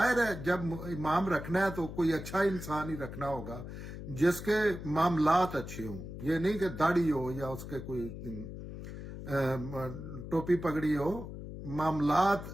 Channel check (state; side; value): noise; left; hum, 10 dB below the sound